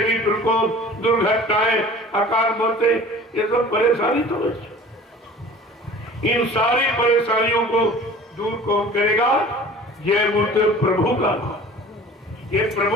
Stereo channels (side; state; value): both; normal; correlation 0.44